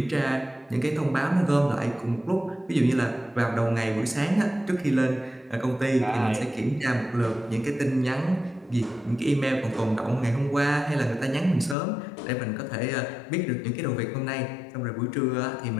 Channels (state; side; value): drops out; right; at 11.8 s